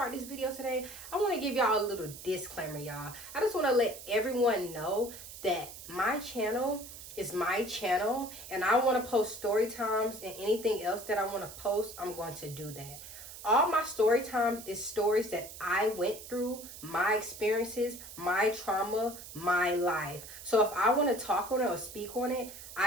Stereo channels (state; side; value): noise; right; hiss, 13 dB below the sound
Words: this video today, I want to give y'all a little disclaimer, y'all. I just want to let everyone know that my channel is my channel, and I want to post story times, and anything else that I want to post, I'm going to do that. All my story times is stories that I went through, my experiences, my trauma, my life. So if I want to talk on it or speak on it,